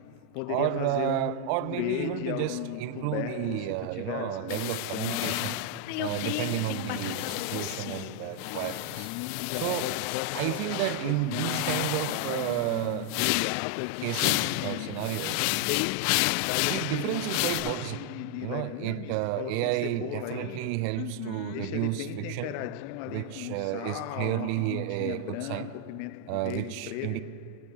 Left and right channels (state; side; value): different; both; correlation 0.00